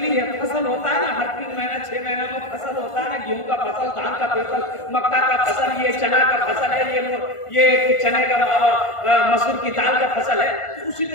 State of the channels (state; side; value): late; right; 1.5 ms